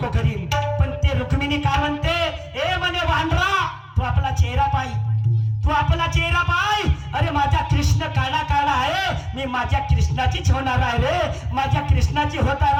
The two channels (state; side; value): identical; both; correlation 1.00